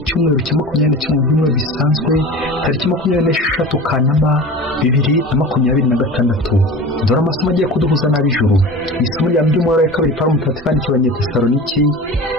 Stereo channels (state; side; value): normal; both; correlation 0.35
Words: cya 21 bisanzwe, tariki 26 Kanama 2026. Dore amasomo agiye kuduhuza n'ab'ijuru. Isomo rya by'umwaka wa kabiri Pawulo Mutagatifu yandikiye Abanyetesaloniki,